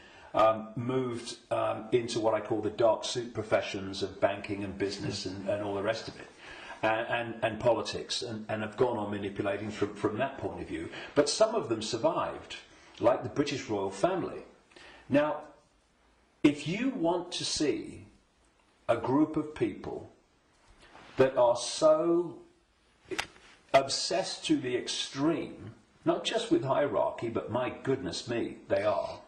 moved into what I call the dark suit professions of banking and business and all the rest of it, and politics, and have gone on manipulating from that point of view. But some of them survived, like the British royal family. Now, if you want to see a group of people that are so obsessed to the extreme, not just with hierarchy, but my goodness me, they are.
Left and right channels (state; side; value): identical; both; correlation 1.00